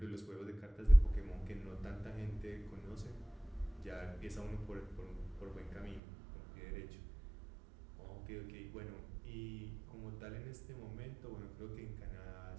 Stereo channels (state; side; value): drops out; left; at 6.0 s